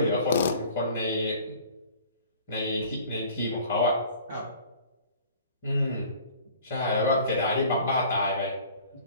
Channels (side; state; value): both; inverted; correlation -0.48